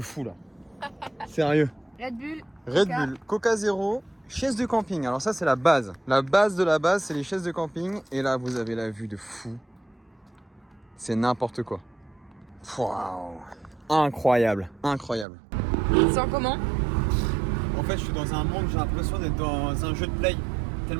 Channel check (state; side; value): drops out; left; at 15.2 s